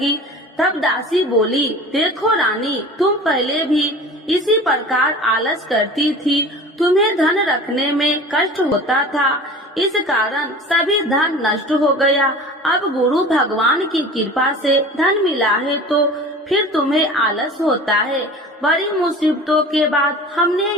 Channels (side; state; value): both; normal; correlation 0.39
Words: तब दासी बोली, देखो रानी, तुम पहले भी इसी प्रकार आलस करती थी। तुम्हें धन रखने में कष्ट होता था, इस कारण सभी धन नष्ट हो गया। अब गुरु भगवान की कृपा से धन मिला है तो फिर तुम्हें आलस होता है। बड़ी मुसीबतों के बाद हमने